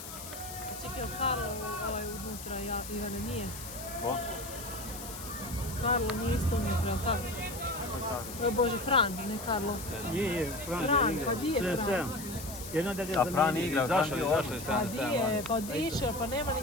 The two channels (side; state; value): left; noise; hiss, 11 dB below the sound